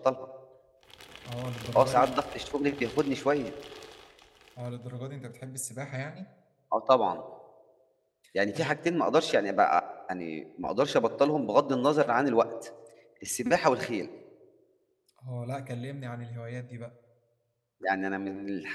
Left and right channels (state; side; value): identical; both; correlation 1.00